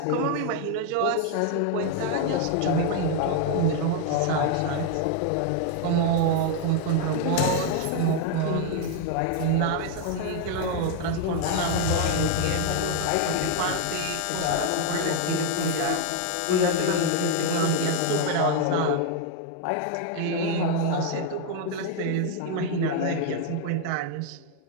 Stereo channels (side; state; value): both; different; correlation 0.00